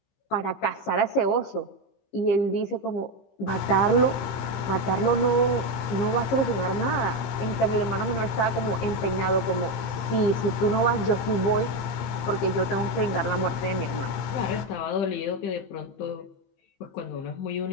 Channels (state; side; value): late; right; 15 ms